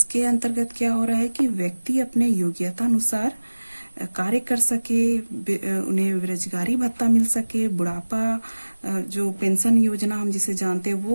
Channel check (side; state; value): both; inverted; correlation -1.00